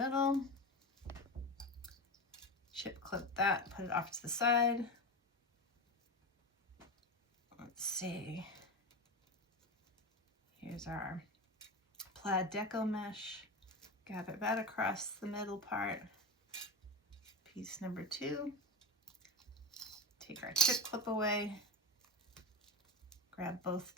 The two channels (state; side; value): normal; both; correlation 0.21